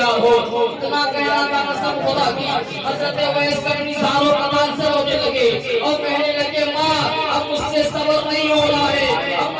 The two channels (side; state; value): both; identical; correlation 1.00